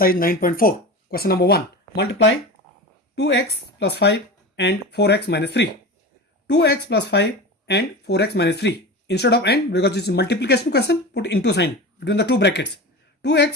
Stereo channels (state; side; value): normal; both; correlation 0.29